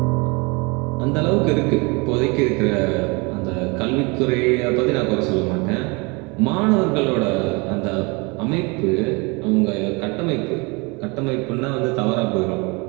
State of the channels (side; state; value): left; quieter; 28.5 dB